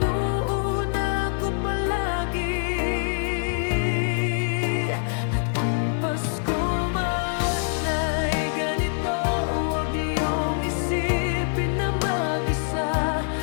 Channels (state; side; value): silent; right; digital silence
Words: ko palagi. At kung Pasko man ay ganito, huwag niyong isipin na mag-isa.